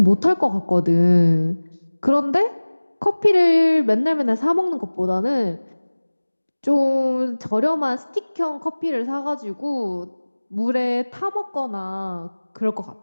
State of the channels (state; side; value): inverted; both; correlation -1.00